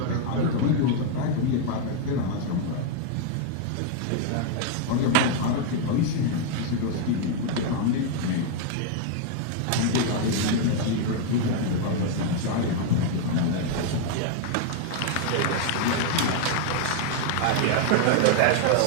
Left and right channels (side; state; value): both; different; correlation 0.00